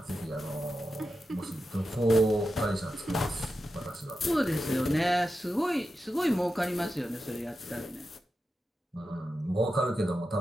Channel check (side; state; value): both; normal; correlation 0.90